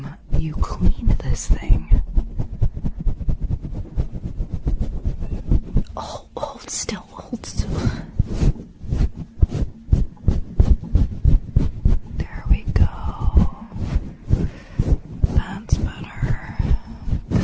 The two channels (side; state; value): both; identical; correlation 1.00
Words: you cleaned this thing? Oh, hold still, hold still. There we go. That's better.